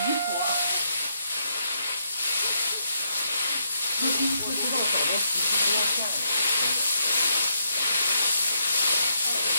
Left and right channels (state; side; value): inverted; both; correlation -0.77